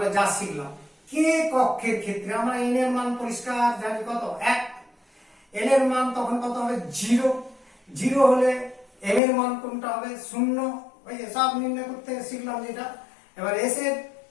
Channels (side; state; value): right; drops out; at 9.2 s